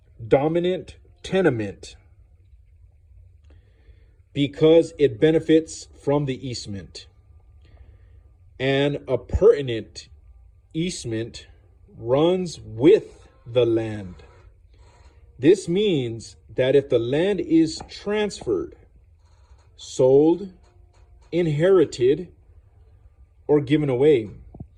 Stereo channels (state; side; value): identical; both; correlation 1.00